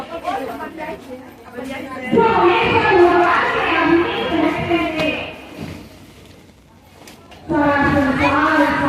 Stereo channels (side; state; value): both; identical; correlation 1.00